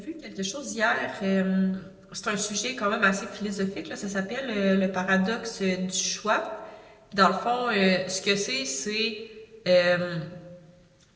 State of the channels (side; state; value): both; identical; correlation 1.00